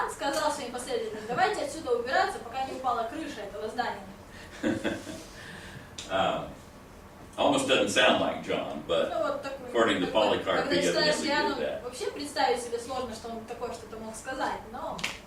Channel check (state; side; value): identical; both; correlation 1.00